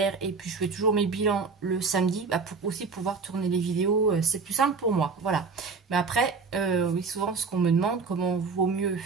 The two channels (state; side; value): quieter; left; 4.7 dB